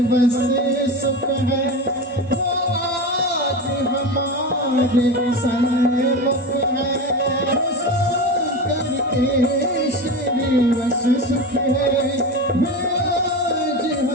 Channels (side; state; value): both; normal; correlation 0.24